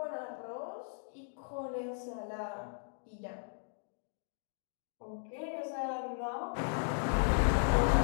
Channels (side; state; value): right; silent; digital silence